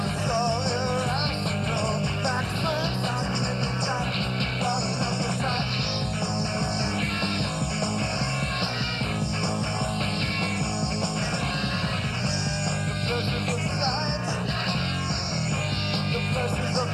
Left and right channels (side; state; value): both; identical; correlation 1.00